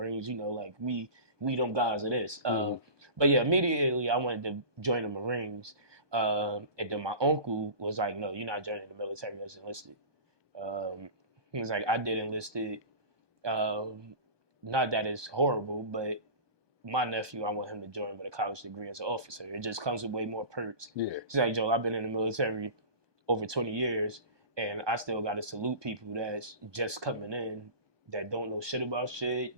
we them guys it is. But yeah, immediately I wanted to join the Marines. And then my uncle was like, no, you're not joining the military as enlisted. He was like, I did enlisted. Not that it's horrible, but my nephew, I want him to join with a college degree as an officer. It just comes with way more perks. Yeah. He's like, Joe, I've been in the military over 20 years, and I still got to salute people that's just coming in that don't know shit about shit,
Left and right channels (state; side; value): late; left; 1.2 ms